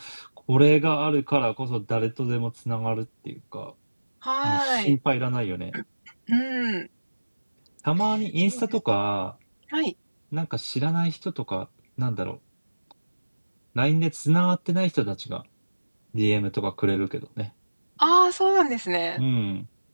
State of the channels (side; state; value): both; inverted; correlation -1.00